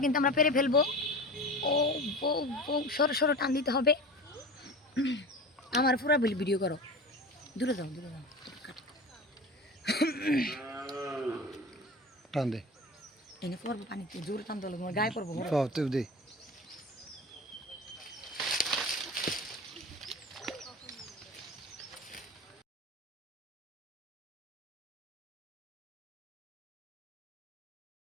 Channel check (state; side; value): normal; both; correlation 0.32